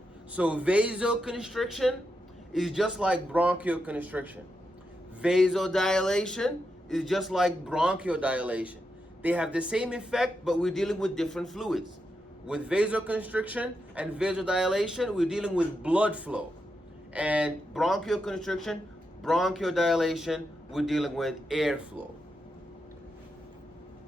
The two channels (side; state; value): both; normal; correlation 0.86